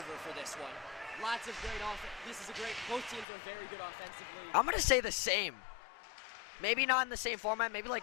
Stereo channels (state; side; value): drops out; right; at 3.2 s